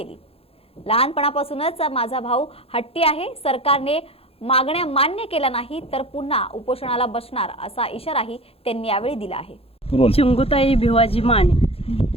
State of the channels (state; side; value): late; right; 0.28 ms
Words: लहानपणापासूनच माझा भाऊ हट्टी आहे, सरकारने मागण्या मान्य केल्या नाही तर पुन्हा उपोषणाला बसणार असा इशाराही त्यांनी यावेळी दिला आहे। चिंगुताई भिवाजी माने